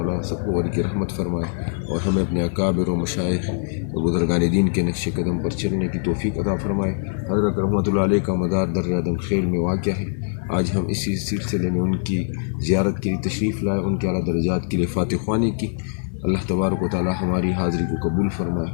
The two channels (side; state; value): right; silent; digital silence